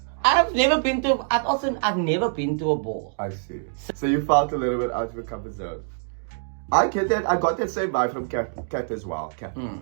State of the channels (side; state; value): left; silent; digital silence